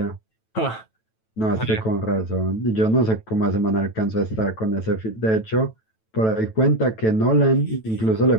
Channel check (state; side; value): late; right; 9.1 ms